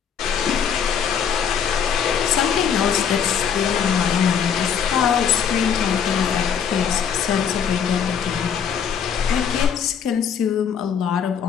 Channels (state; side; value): quieter; right; 7.7 dB